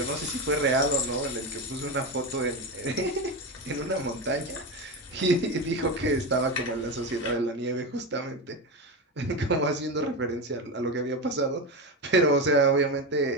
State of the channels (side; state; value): both; normal; correlation 0.17